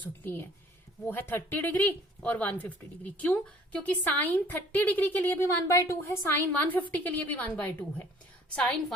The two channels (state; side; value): normal; both; correlation 0.55